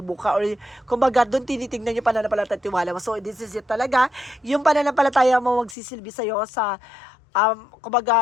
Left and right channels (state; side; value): drops out; right; at 5.8 s